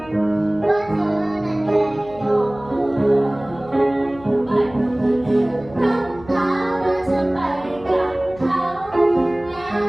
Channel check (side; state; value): left; noise; hum, 20 dB below the sound